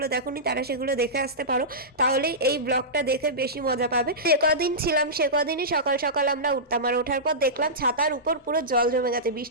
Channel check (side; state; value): both; normal; correlation -0.16